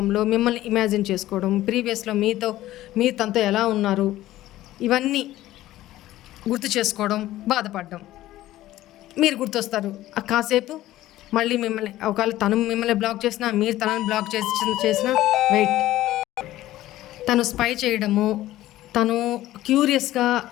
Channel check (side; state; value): right; quieter; 15.1 dB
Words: మిమ్మల్ని ఇమాజిన్ చేసుకోవడం, ప్రీవియస్లో మీరు తనతో ఎలా ఉన్నారు, ఇవన్నీ గుర్తు చేసుకోవడం, బాధపడడం. మీరు గుర్తొస్తారు కాసేపు, మళ్ళీ మిమ్మల్ని ఒకవేళ తను మిమ్మల్ని బ్లాక్ చేసినా, మీరు తనని బ్లాక్ చేసినా వెయిట్. తను స్పై చేయడము, తను క్యూరియస్గా